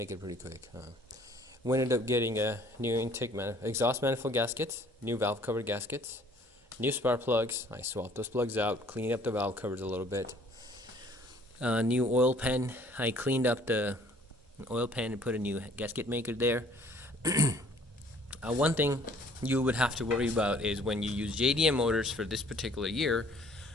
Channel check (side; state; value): both; normal; correlation 0.57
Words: it pretty quick. We ended up getting a new exhaust manifold gaskets, new valve cover gaskets, new spark plugs. I swapped those plugs out, cleaned up the valve covers a little bit. New oil pan. I cleaned up the oil pan and put a new gasket maker there. One thing you would have to worry about is when you use JDM motors for this particular year,